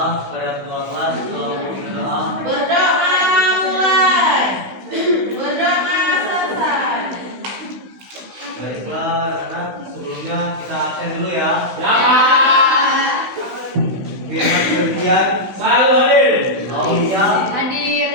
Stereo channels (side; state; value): left; late; 16 ms